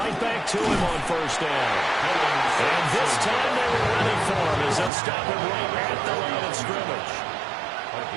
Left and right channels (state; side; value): drops out; left; at 4.9 s